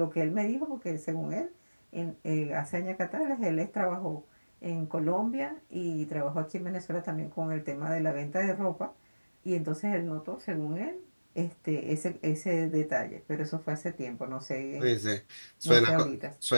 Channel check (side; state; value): both; inverted; correlation -1.00